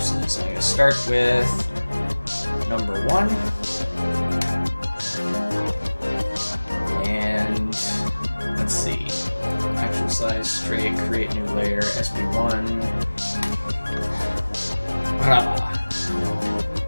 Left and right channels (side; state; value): both; inverted; correlation -1.00